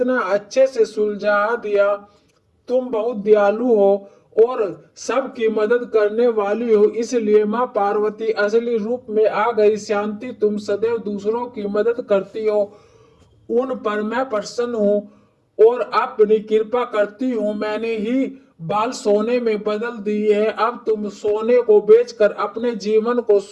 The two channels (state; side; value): identical; both; correlation 1.00